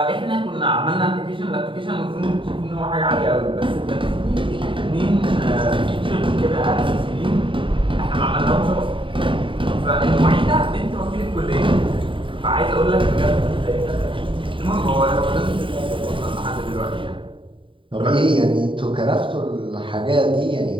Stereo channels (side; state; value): left; late; 0.25 ms